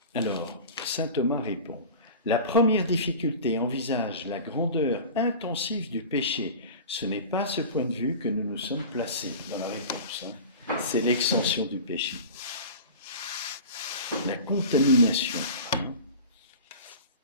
Alors, saint Thomas répond, la première difficulté envisage la grandeur intensive du péché. Ce n'est pas à ce point de vue que nous nous sommes placés dans la réponse. Hein. C'est l'extension du péché. La contamination.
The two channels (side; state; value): both; inverted; correlation -0.35